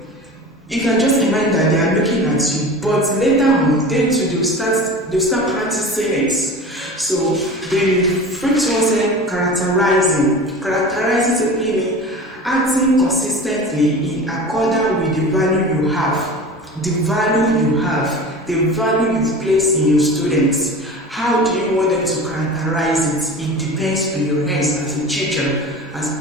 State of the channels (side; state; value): both; normal; correlation 0.35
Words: You can just imagine that they are looking at you, but later on, they'll start practicing it. So the first one said characterizing. Characterizing simply means acting consistently in accordance with the value you have. The value you've placed in your students. How do you want them to characterize it? It depends on your hands as a teacher, as